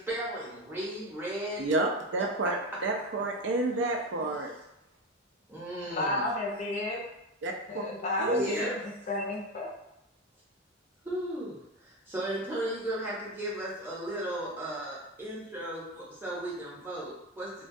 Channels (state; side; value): normal; both; correlation 0.17